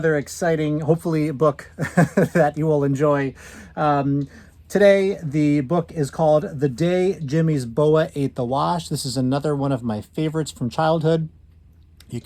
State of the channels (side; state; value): both; identical; correlation 1.00